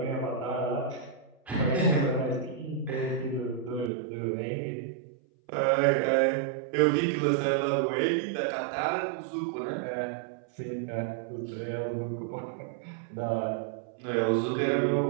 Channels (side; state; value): left; drops out; at 3.9 s